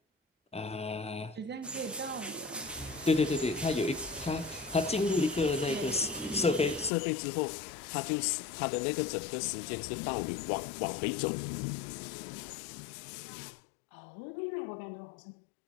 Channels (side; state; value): right; drops out; at 6.9 s